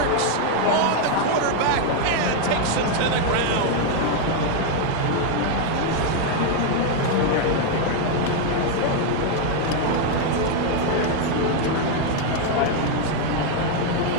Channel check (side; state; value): both; different; correlation 0.01